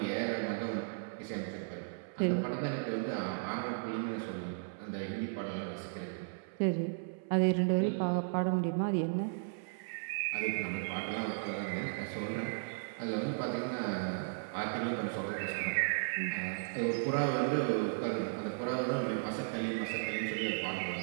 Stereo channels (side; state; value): left; silent; 54 dB below the other